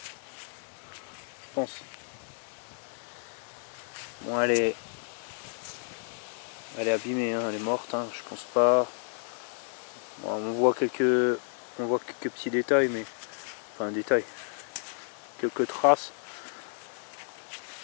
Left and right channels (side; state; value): right; silent; digital silence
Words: Je pense. Bon, elle est abîmée, hein, elle est morte, hein, je pense pas. Bon, on voit quelques petits détails, mais enfin détails, quelques traces.